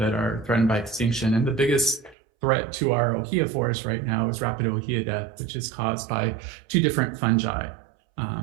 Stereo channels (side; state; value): left; drops out; at 2.1 s